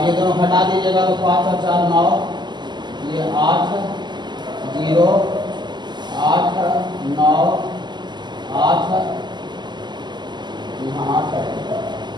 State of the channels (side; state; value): left; late; 0.21 ms